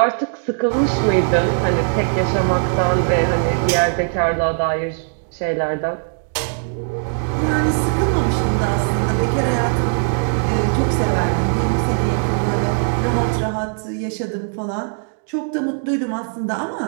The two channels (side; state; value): left; silent; 58 dB below the other